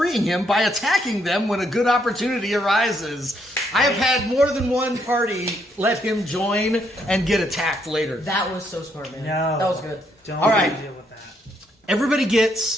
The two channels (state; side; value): normal; both; correlation 0.74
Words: him by attacking them when a good opportunity arises. I have had more than one party let him join and get attacked later. That was so smart, man. No. That was good. Don't All right. deal with that. Everybody